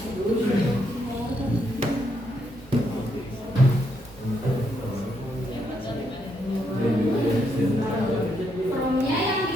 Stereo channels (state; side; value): normal; both; correlation 0.77